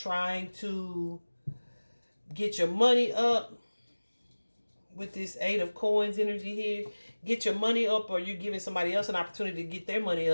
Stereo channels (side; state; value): both; inverted; correlation -1.00